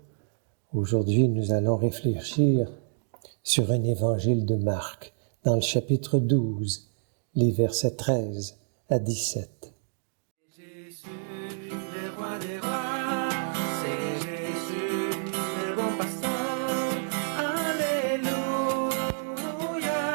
aujourd'hui nous allons réfléchir sur un évangile de Marc, dans le chapitre 12, les versets 13 à 17. Jésus, le roi des rois, c'est Jésus, le bon pasteur. Alléluia,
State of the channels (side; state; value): left; silent; digital silence